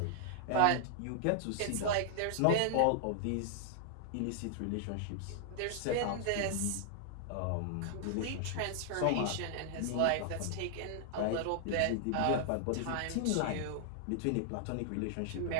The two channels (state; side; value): different; both; correlation -0.01